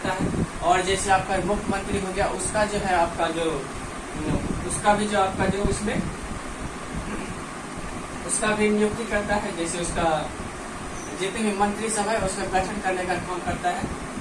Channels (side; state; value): both; identical; correlation 1.00